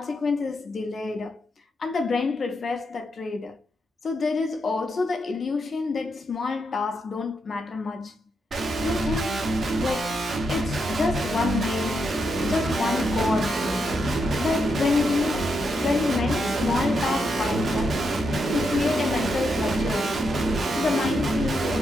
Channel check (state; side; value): normal; both; correlation 0.82